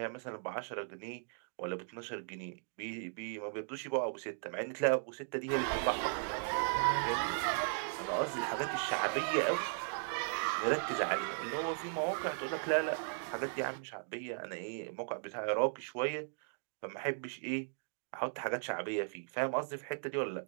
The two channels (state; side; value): silent; left; digital silence